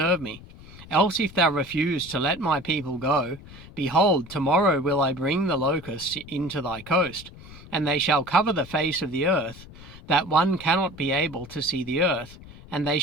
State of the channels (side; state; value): left; noise; rumble, 18 dB below the sound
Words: me. Else if thou refuse to let my people go, behold, tomorrow will I bring the locusts into thy coast, and they shall cover the face of the earth, that one cannot be able to see the earth, and they